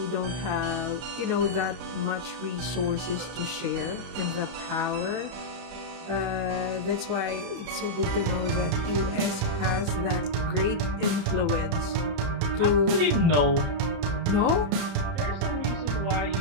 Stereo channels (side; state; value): left; late; 31 ms